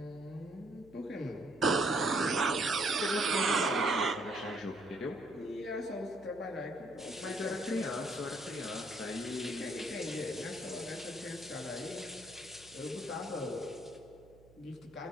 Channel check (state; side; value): noise; right; hum, 25 dB below the sound